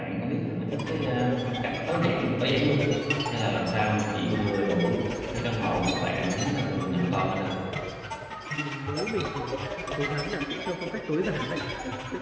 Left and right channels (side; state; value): both; identical; correlation 1.00